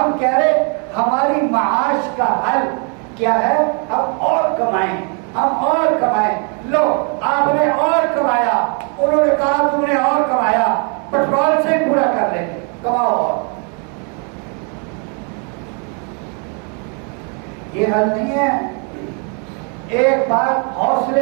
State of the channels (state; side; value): quieter; left; 38.5 dB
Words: کہہ رہے ہماری معاش کا حل کیا ہے, ہم اور کمائیں, ہم اور کمائیں. لو آپ نے اور کمایا, انہوں نے کہا تم نے اور کمایا, پیٹرول سے پورا کر لیں گے, کماؤ اور. یہ حل نہیں ہے. ایک بات